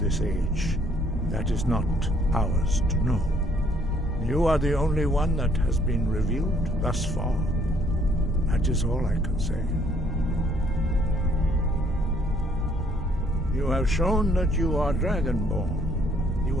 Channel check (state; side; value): normal; both; correlation 0.64